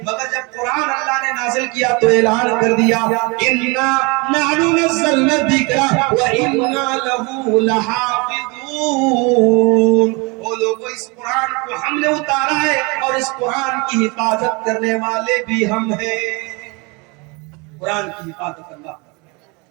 مگر جب قرآن اللہ نے نازل کیا تو اعلان کر دیا اِنَّا نَحْنُ نَزَّلْنَا الذِّكْرَ وَإِنَّا لَهُ لَحَافِظُونَ. وہ لوگوں, اس قرآن کو ہم نے اتارا ہے اور اس قرآن کی حفاظت کرنے والے بھی ہم ہیں. قرآن کی حفاظت اللہ.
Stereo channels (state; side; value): quieter; left; 28.7 dB